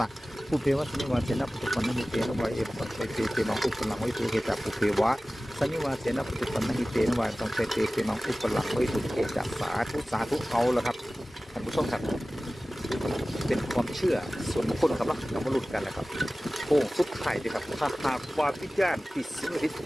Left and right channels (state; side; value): normal; both; correlation 0.97